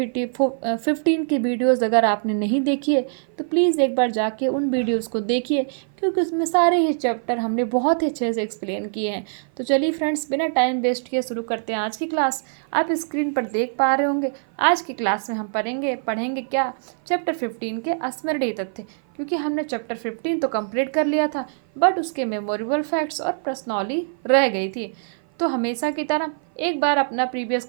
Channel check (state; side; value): silent; left; 55 dB below the other